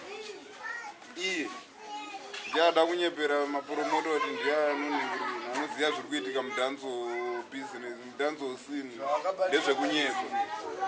iye ndiada kunyepera mapromota kuti ndiye anonhingirira anoziva zviri kuitika mudhanso business mudhanso scene ndezvekunyepa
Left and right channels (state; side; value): identical; both; correlation 1.00